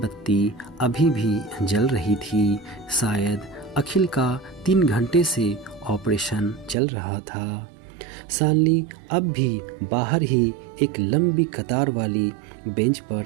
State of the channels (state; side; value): drops out; left; at 6.8 s